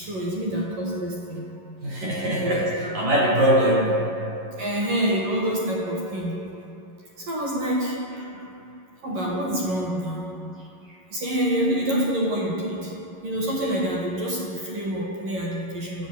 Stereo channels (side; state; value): left; late; 11 ms